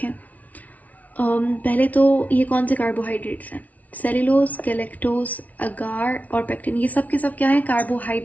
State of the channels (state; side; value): late; right; 0.072 ms